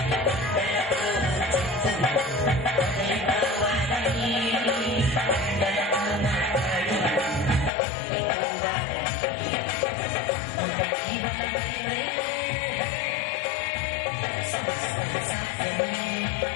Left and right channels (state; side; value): drops out; right; at 7.7 s